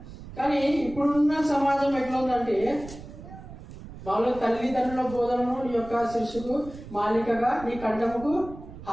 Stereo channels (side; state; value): right; noise; rumble, 15 dB below the sound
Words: కానీ ఇప్పుడున్న సమాజం ఎట్లా ఉందంటే, మామూలుగా తల్లిదండ్రుల బోధనను నీ యొక్క శిరస్సుకు మాలికగా నీ కంఠముకు